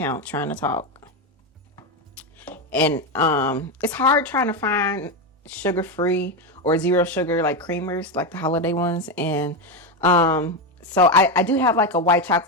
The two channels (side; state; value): both; normal; correlation 0.11